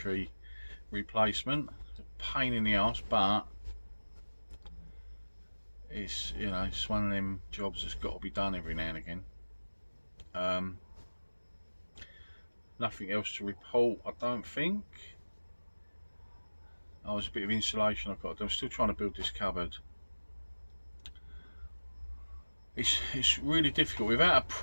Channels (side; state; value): both; inverted; correlation -1.00